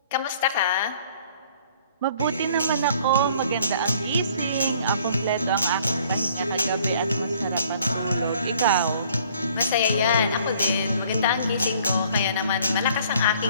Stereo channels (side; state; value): both; inverted; correlation -0.57